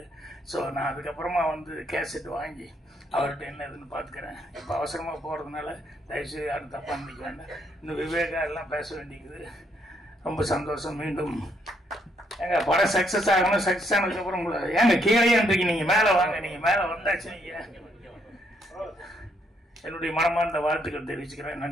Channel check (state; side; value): normal; both; correlation 0.72